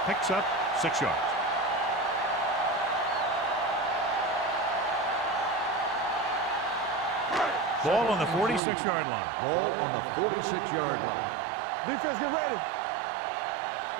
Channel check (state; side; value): drops out; left; at 8.6 s